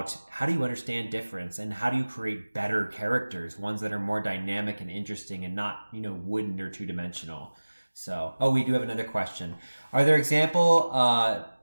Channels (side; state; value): both; inverted; correlation -1.00